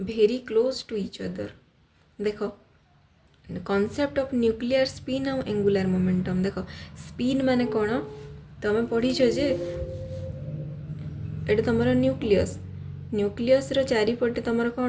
very close to each other। देखो concept of nuclear spin और angular momentum देखो spin माने कौन तुम पढ़ीच जे एटा तुम nucleus nucleus रो चारिपटे तुम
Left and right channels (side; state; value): both; identical; correlation 1.00